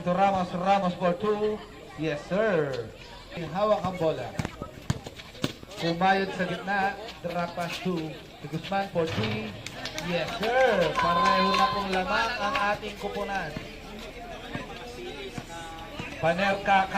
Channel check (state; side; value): identical; both; correlation 1.00